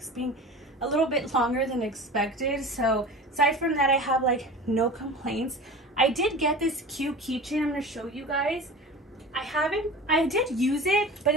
being a little bit longer than expected. So aside from that, I have like no complaints. I did get this cute keychain. I'm going to show you guys. I did use it, but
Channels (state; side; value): normal; both; correlation 0.35